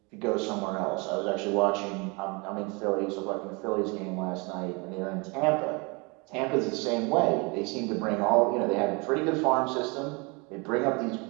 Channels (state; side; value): quieter; left; 29.3 dB